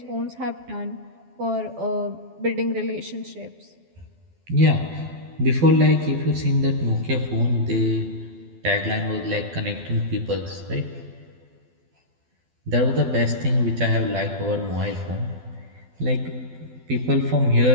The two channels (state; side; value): late; left; 12 ms